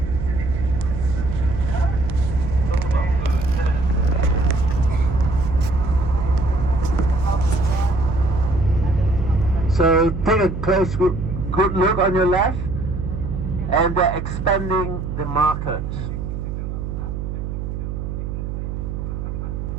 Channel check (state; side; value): noise; right; hum, 5 dB below the sound